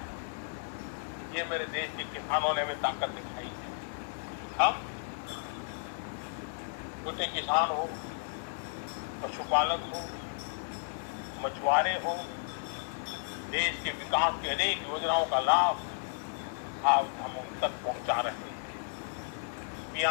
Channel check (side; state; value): right; silent; 55 dB below the other